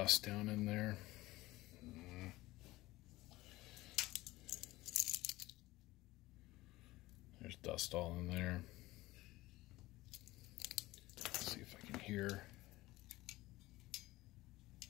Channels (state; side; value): quieter; right; 18.7 dB